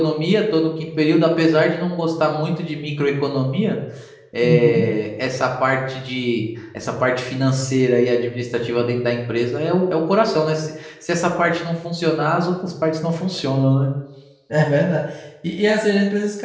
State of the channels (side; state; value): both; identical; correlation 1.00